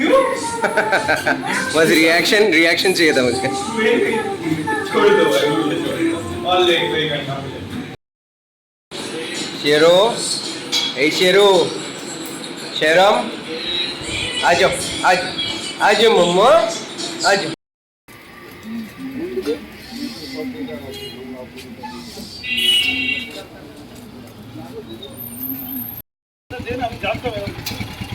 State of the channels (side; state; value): both; identical; correlation 1.00